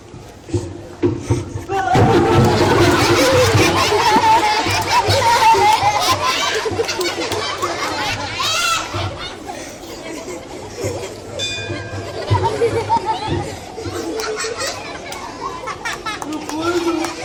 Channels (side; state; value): both; identical; correlation 1.00